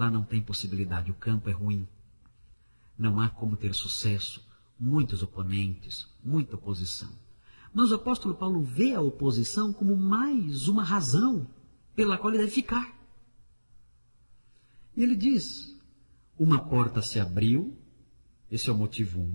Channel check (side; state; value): both; inverted; correlation -1.00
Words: não tem possibilidade, o campo é ruim. Não há como ter sucesso, muitos oponentes, muita oposição. Mas o apóstolo Paulo vê a oposição como mais uma razão pela qual ele deve ficar. E ele diz, uma porta se abriu, esse é o motivo